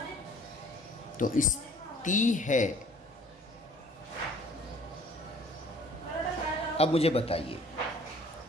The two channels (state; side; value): normal; both; correlation 0.54